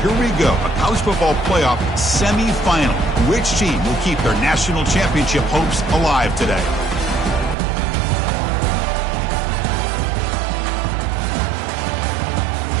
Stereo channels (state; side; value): drops out; left; at 7.6 s